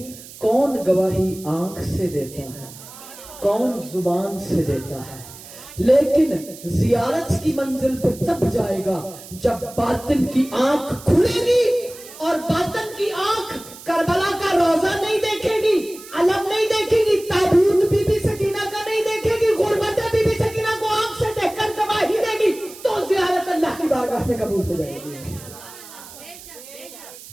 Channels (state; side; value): noise; right; hiss, 17 dB below the sound